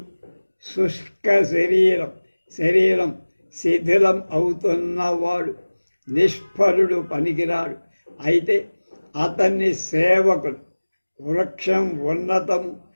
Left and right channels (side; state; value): both; inverted; correlation -1.00